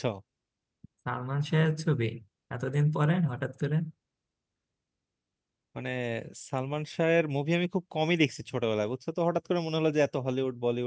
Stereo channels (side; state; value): both; identical; correlation 1.00